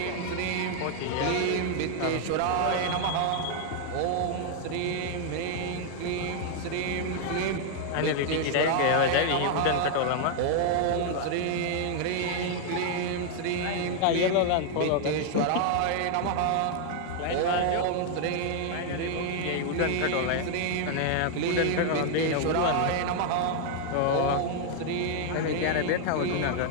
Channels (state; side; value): different; both; correlation 0.00